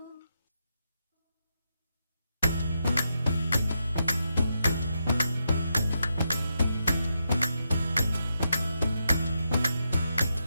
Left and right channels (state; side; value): inverted; both; correlation -0.84